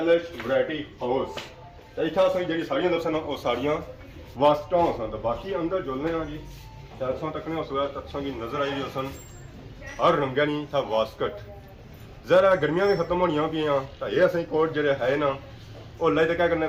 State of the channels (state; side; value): identical; both; correlation 1.00